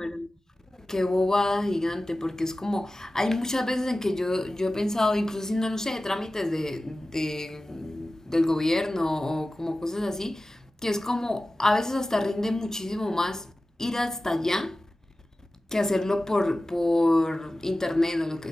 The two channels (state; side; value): normal; both; correlation 0.96